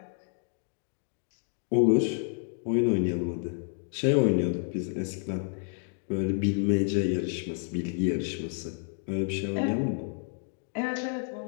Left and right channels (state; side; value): silent; right; 58 dB below the other